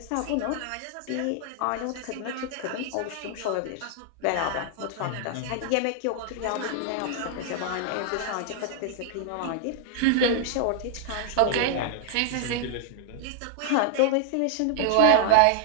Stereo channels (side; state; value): both; different; correlation 0.00